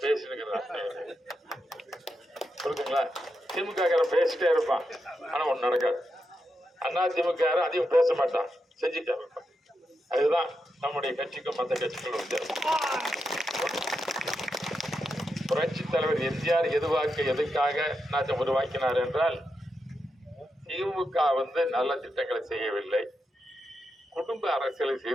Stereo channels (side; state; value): both; normal; correlation 0.86